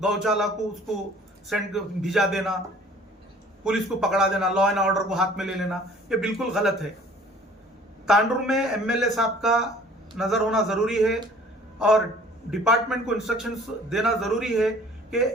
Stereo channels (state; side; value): normal; both; correlation 0.52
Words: को उसको सेंड भिजा देना, पुलिस को पकड़ा देना, लॉ एंड ऑर्डर को हाथ में ले लेना, ये बिल्कुल गलत है। तांडुर में एमएलए साहब का नजर होना जरूरी है और डिपार्टमेंट को इंस्ट्रक्शंस देना जरूरी है कि